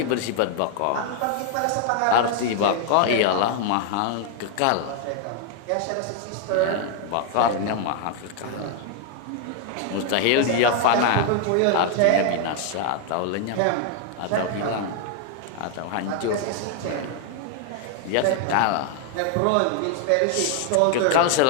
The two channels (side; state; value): both; different; correlation 0.00